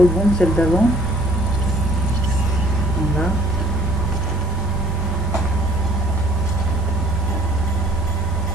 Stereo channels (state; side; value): normal; both; correlation 0.57